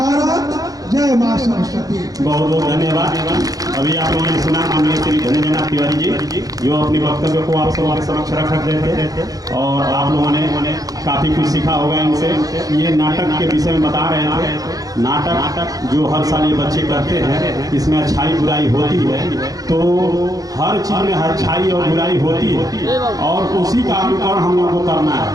जय माँ सरस्वती। बहुत बहुत धन्यवाद। अभी आप लोगों ने सुना माननीय श्री धन्यजनाथ तिवारी जी जो अपने वक्तव्य को आप सबके समक्ष रख रहे थे और आप लोगों ने काफ़ी कुछ सीखा होगा इनसे। ये नाटक के विषय में बता रहे थे। नाटक जो हर साल ये बच्चे करते हैं, इसमें अच्छाई बुराई होती है, तो हर चीज़ में अच्छाई और बुराई होती है और उसी का अनुकरण हम लोगों को करना है।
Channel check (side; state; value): left; late; 0.18 ms